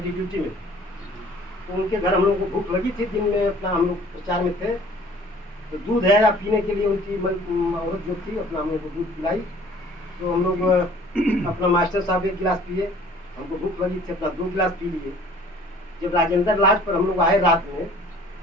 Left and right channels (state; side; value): normal; both; correlation 0.51